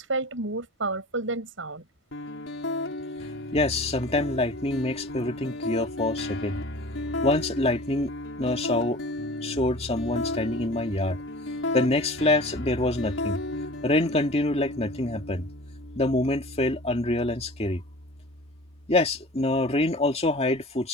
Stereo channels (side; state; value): both; normal; correlation 0.40